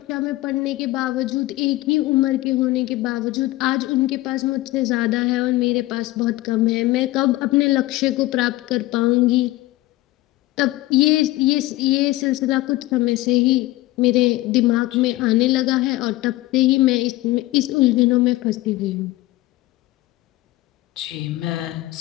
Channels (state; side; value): quieter; right; 18.1 dB